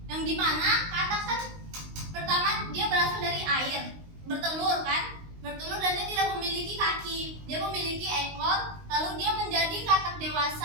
Yang dimana katak kan pertama dia berasal dari air, bertelur kan? Bertelur dan dia tidak memiliki kaki. Dia memiliki ekor, lalu dia menjadi katak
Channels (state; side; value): late; left; 19 ms